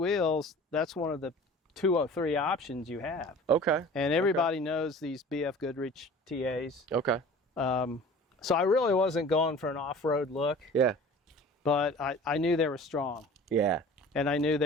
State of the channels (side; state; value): both; normal; correlation 0.43